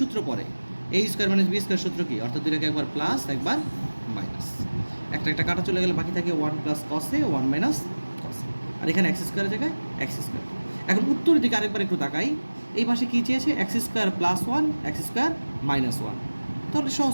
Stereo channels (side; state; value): both; inverted; correlation -1.00